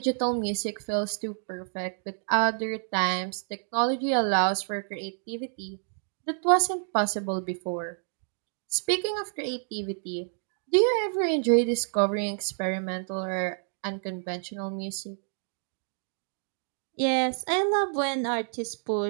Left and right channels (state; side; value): silent; left; digital silence